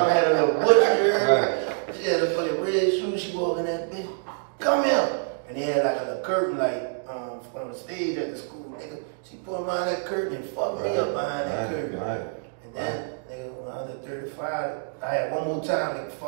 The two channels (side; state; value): left; silent; digital silence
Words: had a little butcher. She had a fucking red shoes, she walking that bitch. Come here. And they had like a little curtain, like, on the stage at the school, nigga. She put behind that curtain and fucked me up behind that curtain. And then, nigga, when I was at 35, I had one more time to